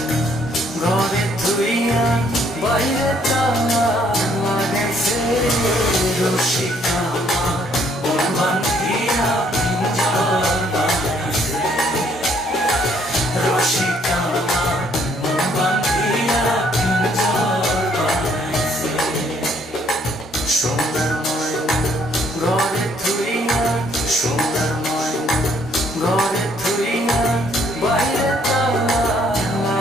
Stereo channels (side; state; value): both; normal; correlation 0.65